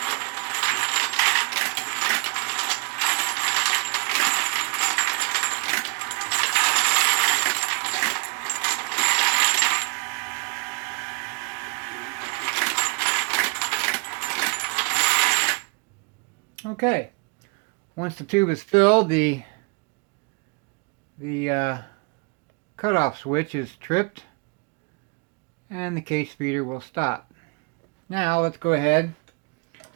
Okay, once the tube is filled, the cutoff switch is tripped and the case feeder will stop. Now let's go ahead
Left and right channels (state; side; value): quieter; left; 32.8 dB